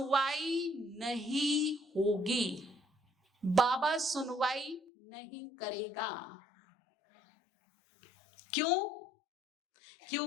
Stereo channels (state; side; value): drops out; right; at 4.8 s